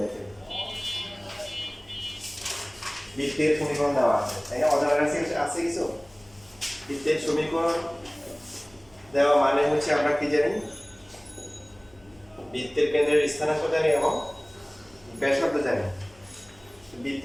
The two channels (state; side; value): noise; left; hum, 28 dB below the sound